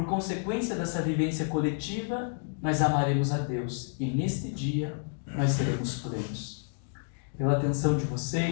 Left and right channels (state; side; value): silent; right; digital silence